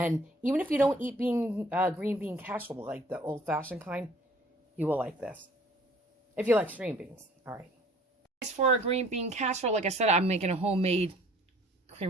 even if you don't eat green bean casserole, like the old-fashioned kind, you will like this. If you like string beans. All right. For a green bean casserole, like I said, I'm making a homemade cream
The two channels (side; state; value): both; normal; correlation 0.55